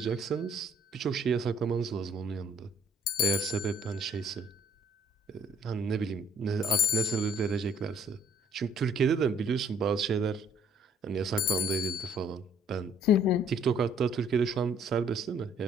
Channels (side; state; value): both; normal; correlation 0.60